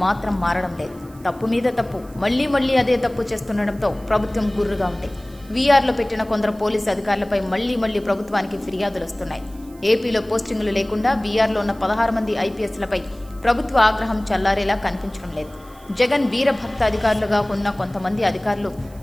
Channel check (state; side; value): noise; right; hiss, 26 dB below the sound